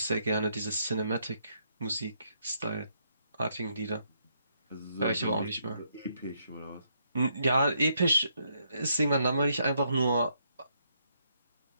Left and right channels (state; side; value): inverted; both; correlation -0.76